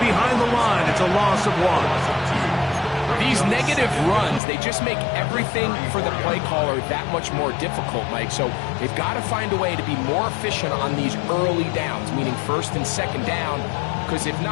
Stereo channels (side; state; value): right; drops out; at 4.4 s